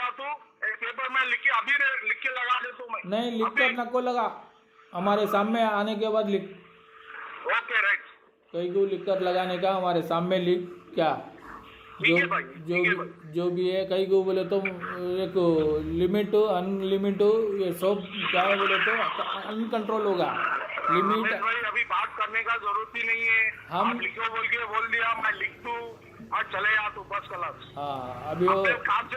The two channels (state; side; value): identical; both; correlation 1.00